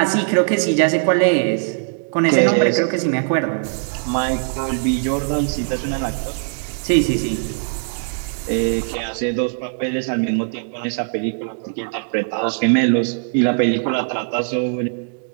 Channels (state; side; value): silent; left; digital silence